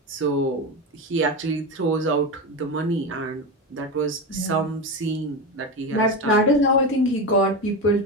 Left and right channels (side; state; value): both; normal; correlation 0.19